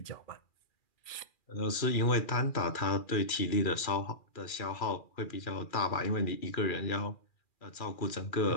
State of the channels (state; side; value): late; right; 2.4 ms